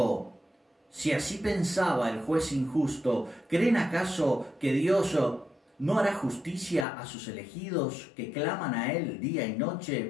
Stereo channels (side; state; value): right; drops out; at 6.9 s